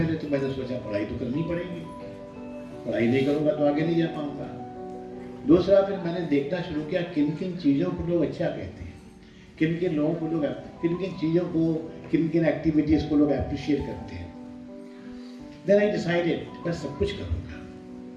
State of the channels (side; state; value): both; identical; correlation 1.00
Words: तो मैंने सोचा पढ़ाई तो करनी पड़ेगी, पढ़ाई नहीं करूँगा तो आगे नहीं जा पाऊँगा। दूसरा फिर मैंने देखना शुरू किया किन किन चीज़ों को लोग अच्छा कहते हैं, किन किन लोगों को लोग, किन किन चीज़ों को, किन किन एक्टिविटीज़ को लोग अप्रिशिएट करते हैं। देन आई डिसाइडेड मैं सब कुछ करूँगा।